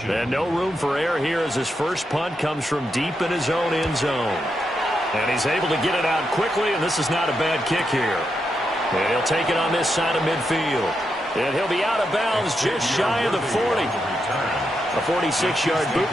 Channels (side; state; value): both; normal; correlation 0.84